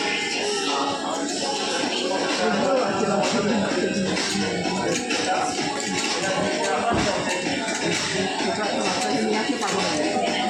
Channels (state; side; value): identical; both; correlation 1.00